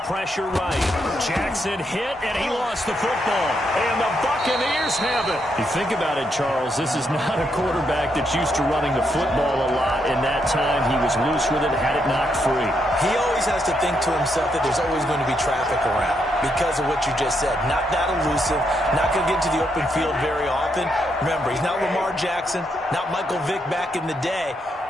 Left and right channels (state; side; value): normal; both; correlation 0.79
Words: pressure right. Jackson hit, and he lost the football. And the Buccaneers have it. You think about it, Charles, this is not a quarterback that's used to running the football a lot. In that time, he was loose with it, had it knocked free. He always has to think to himself that there's always going to be traffic around because of what you just said. Not that elusive, not going to get into the open field very often. Remember, he's not Lamar Jackson, not Michael Vick back in the day.